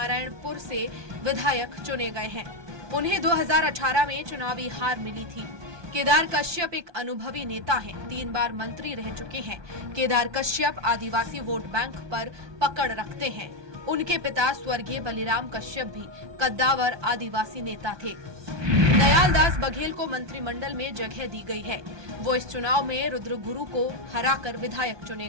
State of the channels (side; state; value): left; late; 1.2 ms